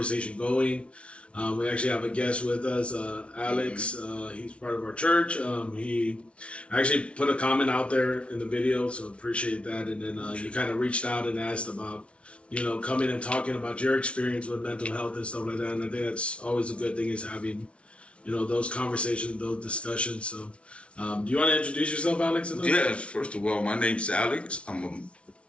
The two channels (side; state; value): right; late; 0.060 ms